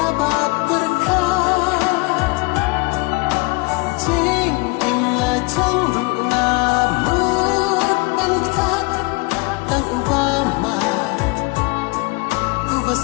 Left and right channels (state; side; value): quieter; right; 27.0 dB